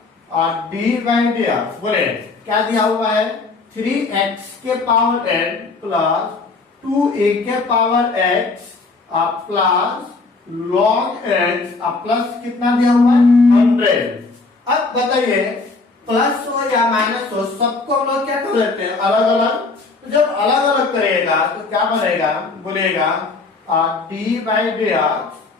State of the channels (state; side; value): quieter; right; 3.8 dB